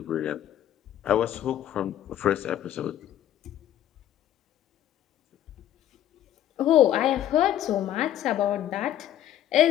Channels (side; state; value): right; quieter; 11.7 dB